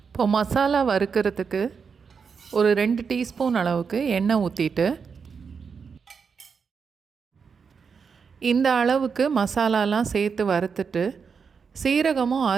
இப்போ மசாலா வறுக்கிறதுக்கு ஒரு 2 டீஸ்பூன் அளவுக்கு எண்ணெய் ஊற்றிட்டு இந்த அளவுக்கு மசாலாலாம் சேர்த்து வறுத்துட்டு சீரகமும்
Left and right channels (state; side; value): quieter; left; 5.9 dB